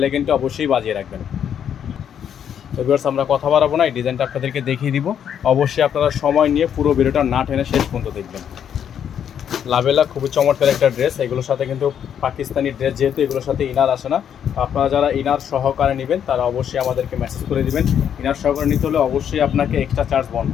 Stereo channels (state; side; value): quieter; right; 8.8 dB